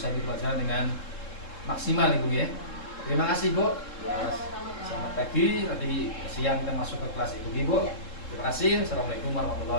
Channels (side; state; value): right; late; 3.7 ms